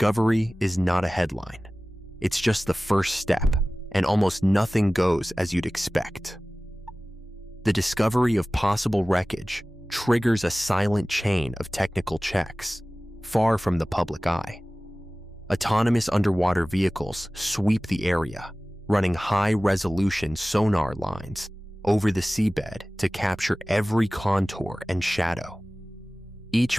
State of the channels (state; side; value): normal; both; correlation 0.97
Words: is not a headline. It's just the first step, and almost nothing goes as you'd expect. The discovery of possible wreckage triggers a silent chain of technical checks, far from the public eye. Autonomous underwater vehicles sweep the area, running high-resolution sonar lines over the seabed to capture every contour and shadow.